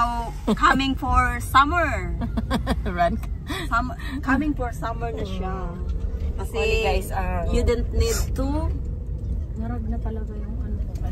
coming for summer. Coming for summer na siya. Kasi guys, you don't need to. Narag na talaga yung ano,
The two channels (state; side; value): identical; both; correlation 1.00